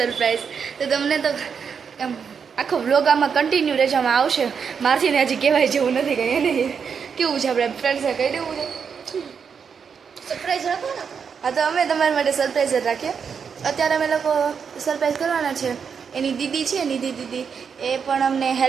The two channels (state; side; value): quieter; left; 6.5 dB